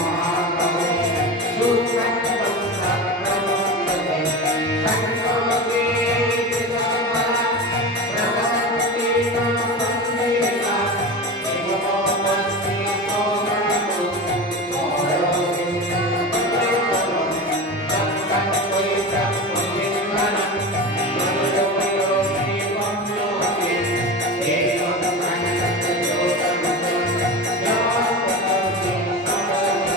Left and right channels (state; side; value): normal; both; correlation 0.26